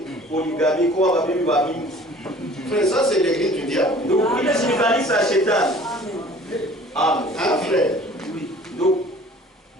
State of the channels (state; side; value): normal; both; correlation 0.49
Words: poligami kwa babibi wa mingi. Frère, ça c'est l'église du diable. Ndugu, ile si kanisa ya shetani. Amen. Hein, frère? Ndugu,